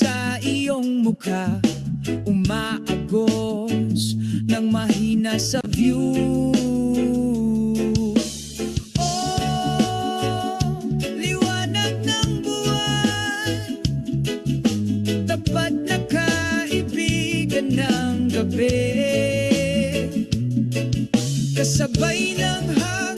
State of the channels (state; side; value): identical; both; correlation 1.00